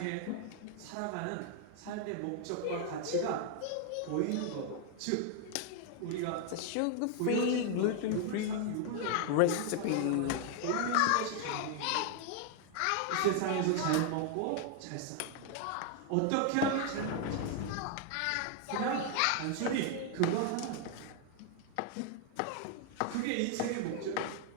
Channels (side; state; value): both; different; correlation 0.00